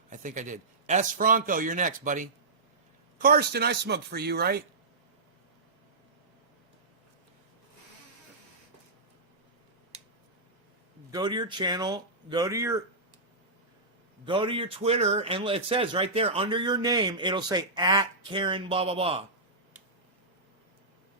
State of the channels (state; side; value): quieter; left; 3.2 dB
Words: I think I did. S. Franco, you're next, buddy. Karsten, I smoked for you, right? Go to your channel. Go to your Twitter, and it says right there under your name, it'll say at Karen blah blah blah.